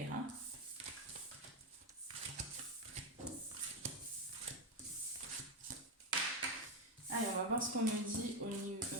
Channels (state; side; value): normal; both; correlation 0.10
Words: hein. Allez, on va voir ce qu'on me dit